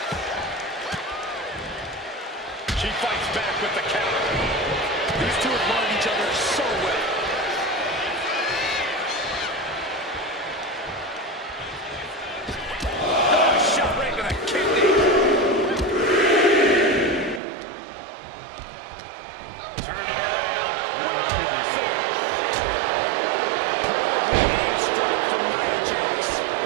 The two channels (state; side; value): drops out; left; at 17.4 s